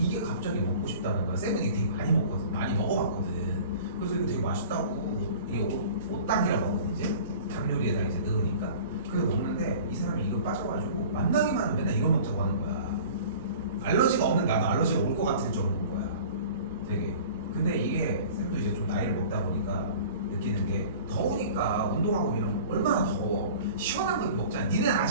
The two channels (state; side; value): inverted; both; correlation -0.43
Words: 갑자기 먹고 싶다는 거야. 쌤은 이게 되게 많이 먹거든. 많이 먹어봤거든. 그래서 이거 되게 맛있다고. 이게 옷당이라고 하거든 이제. 닭 요리에다 이제 넣으니까. 그래서 먹는데 이 사람이 이거 빠져가지고 만나기만 하면 맨날 이거 먹자고 하는 거야. 알러지가 없는 나도 알러지가 올 것 같을 정도인 거야. 되게. 근데 이게 쌤도 이제 좀 나이를 먹다 보니까 느끼는 게 더우니까 운동하고 이런 거 얼마나 더워. 시원한 거 먹잖아. 니는